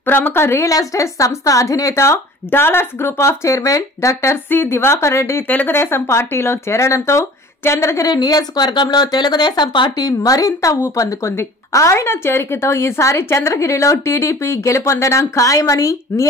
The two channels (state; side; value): normal; both; correlation 0.45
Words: ప్రముఖ రియల్ ఎస్టేట్ సంస్థ అధినేత Dollars group of chairman doctor C Diwakar Reddy Telugu Desam పార్టీలో చేరడంతో చంద్రగిరి నియోజకవర్గంలో తెలుగుదేశం పార్టీ మరింత ఊపందుకుంది. ఆయన చేరికతో ఈసారి చంద్రగిరిలో టీడీపీ గెలుపొందడం ఖాయమని